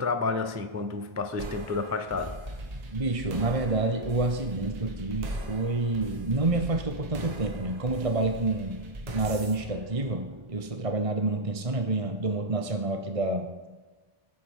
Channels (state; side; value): late; left; 1.6 ms